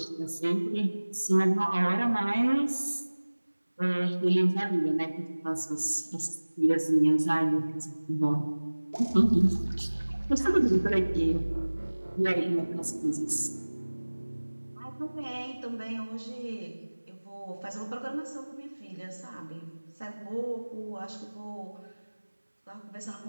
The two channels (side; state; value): both; inverted; correlation -1.00